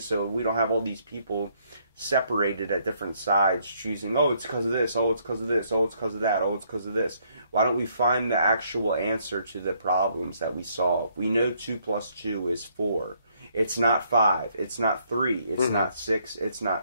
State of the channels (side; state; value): both; inverted; correlation -0.69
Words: so we don't have all these people separated at different sides choosing, oh, it's because of this, oh, it's because of this, oh, it's because of that, oh, it's because of this. Why don't we find the actual answer to the problems that we solve? We know 2 + 2 is 4. It's not 5. It's not 3. It's not 6. It's